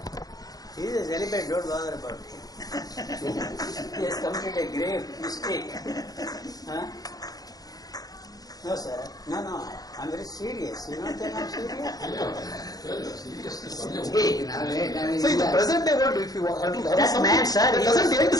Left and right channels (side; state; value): right; late; 0.18 ms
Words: He is a celibate, don't bother about it. He has committed a grave mistake. No, sir. No. I'm very serious. You don't think I'm serious? So in the present day world, if you want to That man, sir,